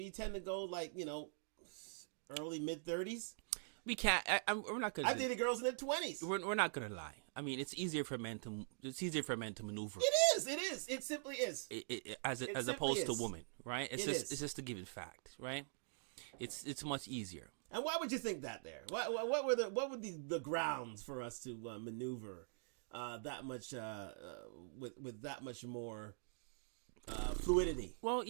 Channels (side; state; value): left; silent; digital silence